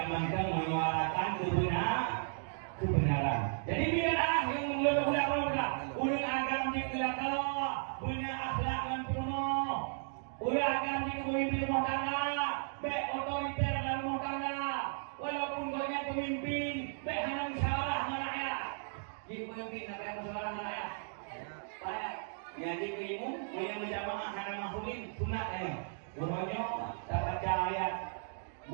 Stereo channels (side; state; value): left; silent; digital silence